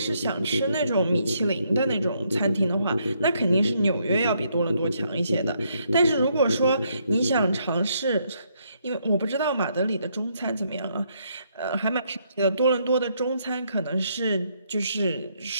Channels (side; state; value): both; inverted; correlation -0.74